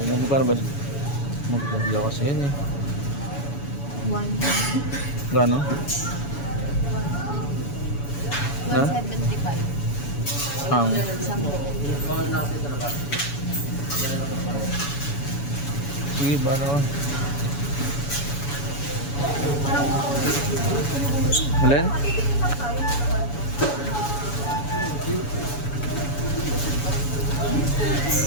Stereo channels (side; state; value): right; late; 7.1 ms